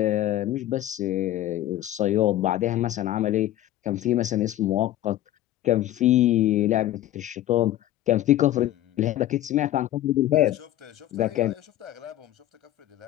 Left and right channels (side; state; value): right; quieter; 13.9 dB